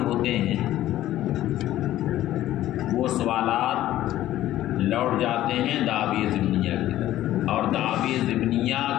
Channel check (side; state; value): right; quieter; 13.9 dB